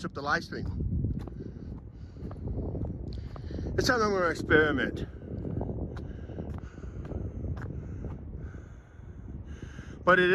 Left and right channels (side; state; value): both; identical; correlation 1.00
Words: up the live stream. It's something I'm going to experiment. But it